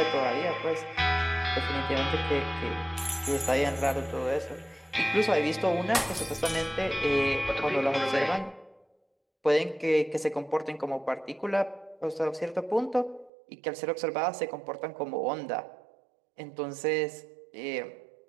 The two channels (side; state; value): left; drops out; at 13.3 s